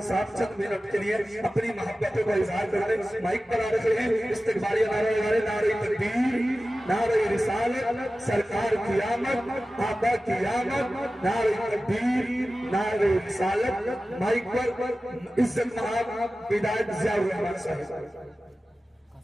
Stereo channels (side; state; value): both; normal; correlation 0.95